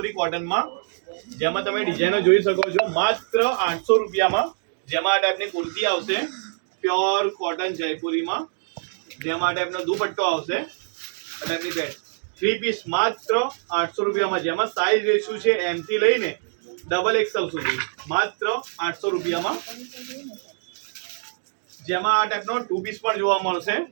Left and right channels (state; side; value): silent; left; digital silence